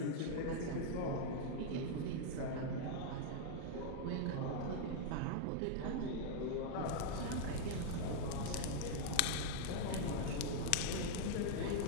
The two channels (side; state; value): both; different; correlation -0.01